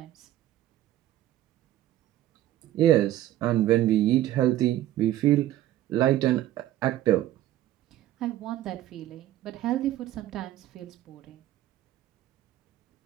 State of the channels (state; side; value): quieter; left; 13.7 dB